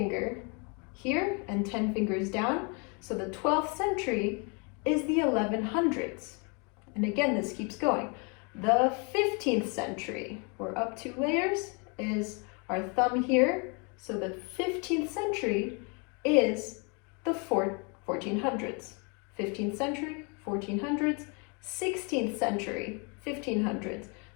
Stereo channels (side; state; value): right; quieter; 33.9 dB